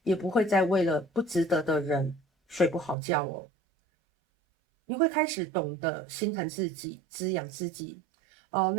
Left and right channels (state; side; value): drops out; left; at 3.0 s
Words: 也不会再为了不值得的人睡不好觉哦。你会开始懂得心疼自己，滋养自己，